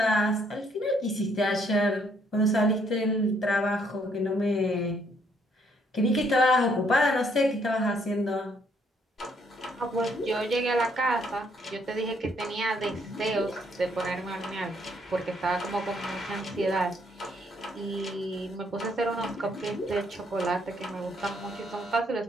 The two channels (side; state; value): both; normal; correlation 0.69